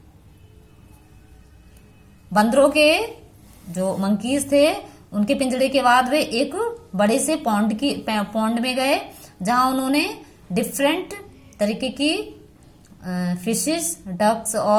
बंदरों के जो monkeys थे उनके पिंजड़े के बाद वे एक बड़े से पॉन्ड में गए जहां उन्होंने डिफरेंट तरीके की फिशेस, डक्स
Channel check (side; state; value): both; identical; correlation 1.00